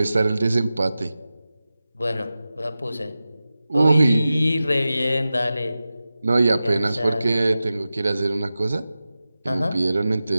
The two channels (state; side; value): inverted; both; correlation -0.94